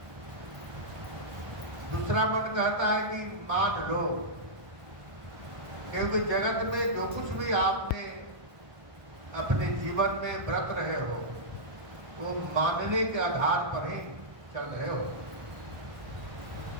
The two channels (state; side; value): late; left; 1.3 ms